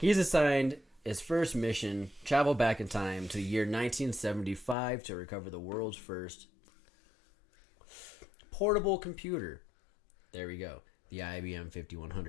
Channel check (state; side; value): drops out; right; at 4.8 s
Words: assigned his first mission, travel back in time to the year 1975 to recover the world's first portable computer. There we go. The IBM